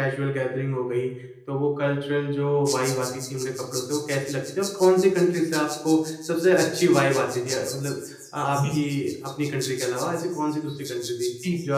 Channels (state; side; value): identical; both; correlation 1.00